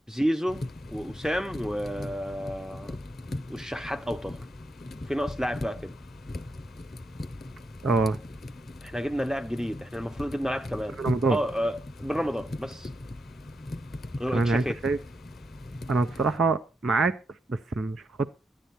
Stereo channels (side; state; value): both; normal; correlation 0.83